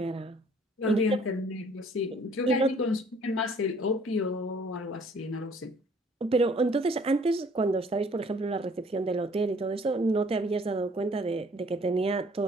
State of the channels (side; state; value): both; normal; correlation 0.57